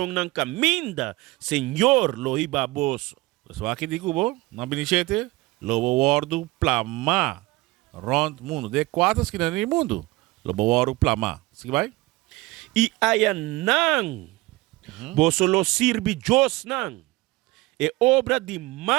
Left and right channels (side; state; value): left; quieter; 20.9 dB